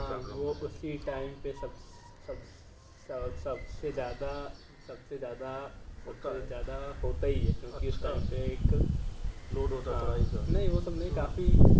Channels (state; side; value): identical; both; correlation 1.00